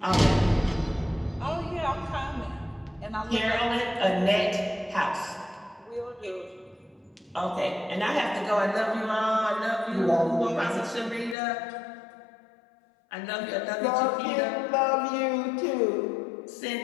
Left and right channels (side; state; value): right; drops out; at 11.4 s